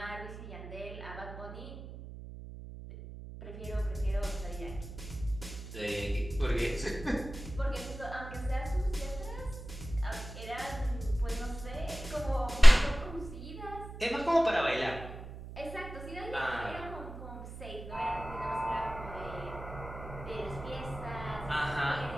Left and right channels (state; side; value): noise; right; hum, 12 dB below the sound